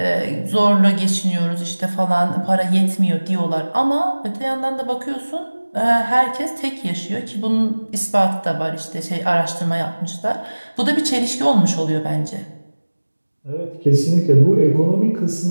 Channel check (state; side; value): inverted; both; correlation -1.00